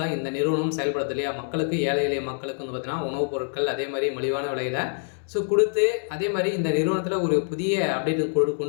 தான் இந்த நிறுவனம் செயல்படுது இல்லையா. மக்களுக்கு ஏழை எளிய மக்களுக்கு பார்த்தீங்கன்னா உணவுப் பொருட்கள் அதே மாதிரி மலிவான விலையில் ஸோ கொடுத்து அதே மாதிரி இந்த நிறுவனத்தில் ஒரு புதிய அப்டேட்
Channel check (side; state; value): right; silent; 61 dB below the other